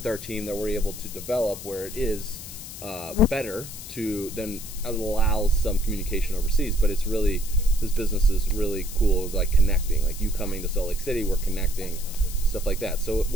our team that we're able to develop where it is better to then allow some communication overseas. But it's really, this business is really cool, like connecting, like you coming to Salt Lake City, we're connecting, stuff like that. So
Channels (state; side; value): noise; left; hiss, 12 dB below the sound